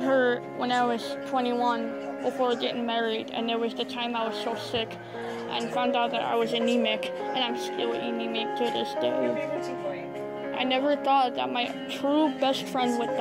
her when I was 21 before getting married, and there was the time I was so sick and found out that I was anemic, and I'm still anemic to this day. I never thought that my true best friend would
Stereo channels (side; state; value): both; identical; correlation 1.00